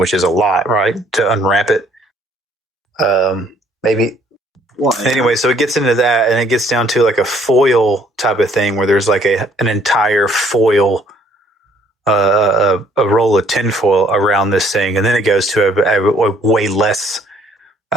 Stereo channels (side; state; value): both; normal; correlation 0.62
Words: is a lot, right? To unwrap it. Maybe. What? Anyway, so it gets into that, and it gets down to like a foil type of thing where there's like an entire foil, a roll of tinfoil around this thing, and then it goes to a way less